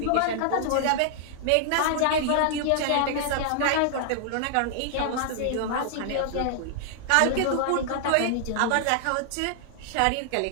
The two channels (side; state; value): both; different; correlation -0.01